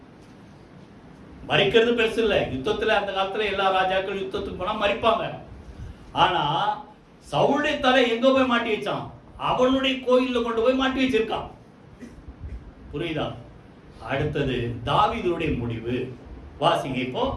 மறிக்கிறது பெருசு இல்ல. யுத்தத்துல அந்த காலத்துல எல்லா ராஜாக்கள் யுத்தத்துக்கு போனா மறிப்பாங்க. ஆனா சவுளுடைய தலை எங்க போய் மாட்டி வச்சான்? அவனுடைய கோயில்ல கொண்டு போய் மாட்டி வச்சிருக்கான். புரியுதா? அடுத்தது தாவீதுடைய முடிவு வாசிங்க. இப்போ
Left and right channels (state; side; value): identical; both; correlation 1.00